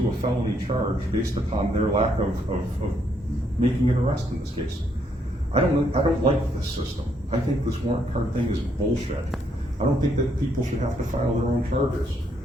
a felony charge based upon their lack of making an arrest in this case. I don't like this system. I think this warrant card thing is bullshit. I don't think that people should have to file their own charges.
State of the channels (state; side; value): normal; both; correlation 0.72